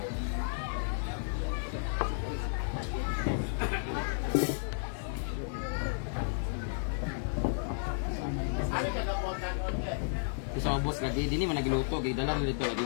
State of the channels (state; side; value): silent; right; digital silence